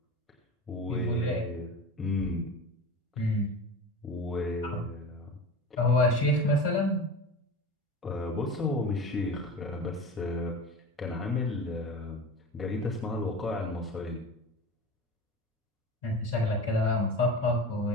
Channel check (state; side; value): normal; both; correlation 0.31